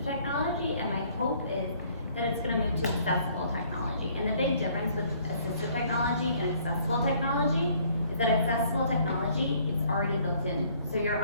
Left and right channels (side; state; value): both; inverted; correlation -0.61